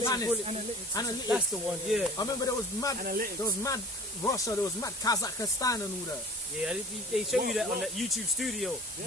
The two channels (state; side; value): normal; both; correlation 0.43